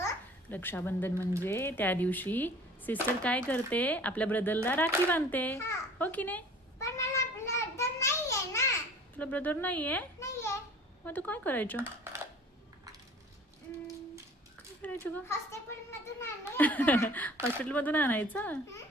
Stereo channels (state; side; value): normal; both; correlation 0.47